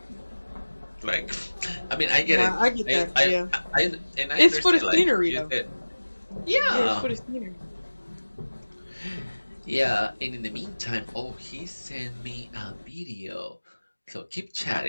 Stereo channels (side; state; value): both; inverted; correlation -1.00